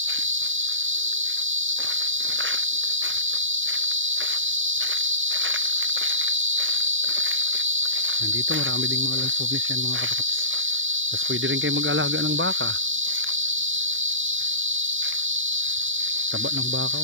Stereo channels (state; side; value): late; left; 0.57 ms